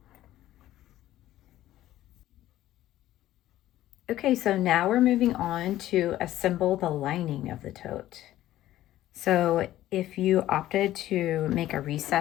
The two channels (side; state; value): right; quieter; 14.1 dB